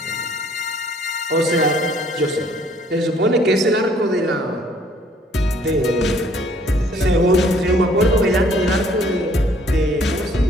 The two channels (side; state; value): both; normal; correlation 0.60